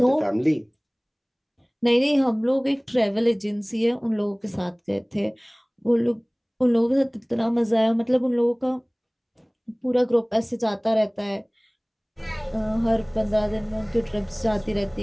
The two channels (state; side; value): identical; both; correlation 1.00